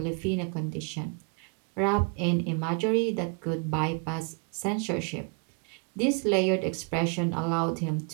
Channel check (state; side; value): quieter; left; 36.8 dB